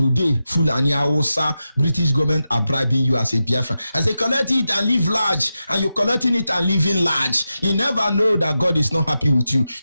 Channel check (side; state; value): both; inverted; correlation -0.90